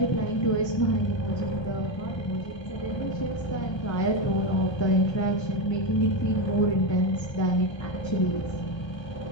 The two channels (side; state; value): right; late; 1.3 ms